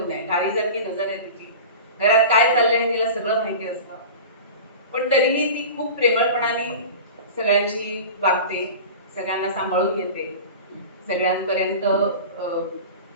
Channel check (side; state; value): both; inverted; correlation -0.34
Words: आहे. गाडीसारखी नजर आहे तिची. घरात काय चाललंय तिला सगळं माहिती असतं. पण तरीही ती खूप प्रेमळपणाने सगळ्यांची वागते, सगळ्यांना सांभाळून घेते, सगळ्यांपर्यंत